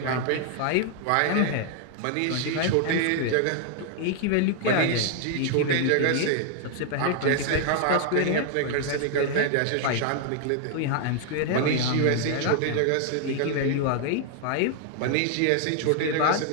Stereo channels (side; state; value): both; different; correlation 0.00